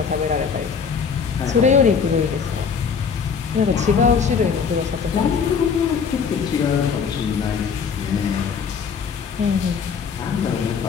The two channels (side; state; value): right; quieter; 6.3 dB